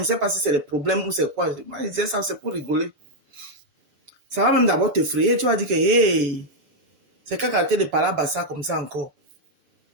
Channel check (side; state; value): left; late; 7.0 ms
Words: sais pas si c'est le problème ou c'est quoi. Moi, je disais ça, c'est pour rigoler. Ça va même d'abord t'effrayer. Tu vas dire que, hey, c'est qu'à rater de parler à ça comme ça encore.